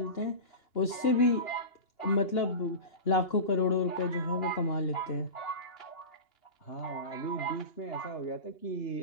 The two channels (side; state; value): right; late; 2.9 ms